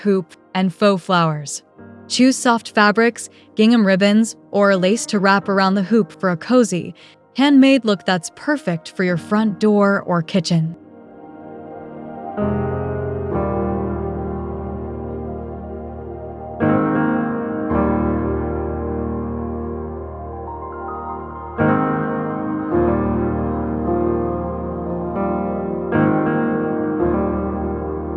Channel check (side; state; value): both; identical; correlation 1.00